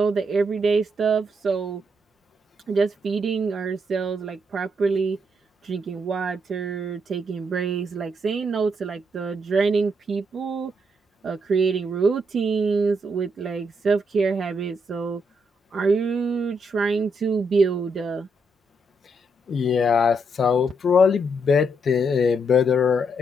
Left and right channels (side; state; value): both; normal; correlation 0.77